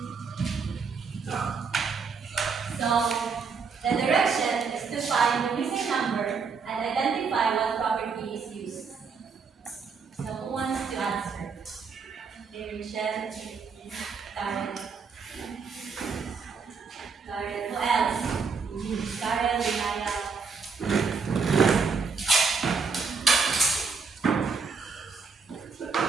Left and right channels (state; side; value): quieter; left; 5.1 dB